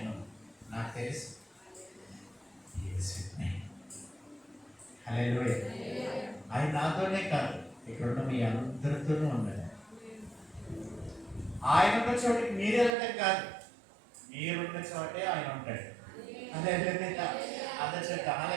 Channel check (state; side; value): drops out; left; at 13.0 s